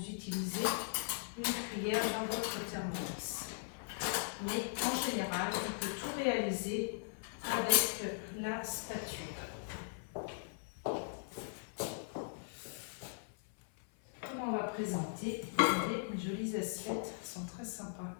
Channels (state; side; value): silent; right; 52 dB below the other